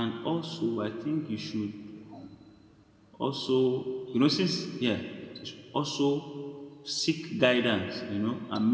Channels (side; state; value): both; identical; correlation 1.00